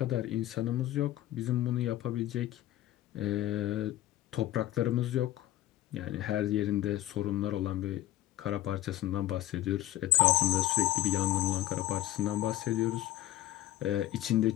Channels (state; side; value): quieter; right; 14.8 dB